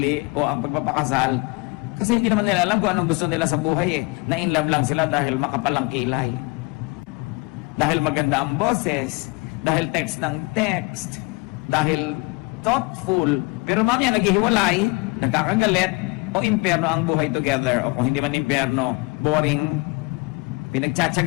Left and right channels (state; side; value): quieter; right; 28.0 dB